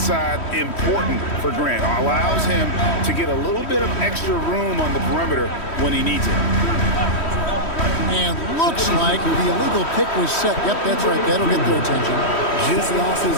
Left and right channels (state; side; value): late; right; 3.1 ms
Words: important for Grant. Allows him to get a little bit of extra room on the perimeter when he needs it. And looks like the illegal pick was set. Yep, that's right. That'll get their attention. Just lost his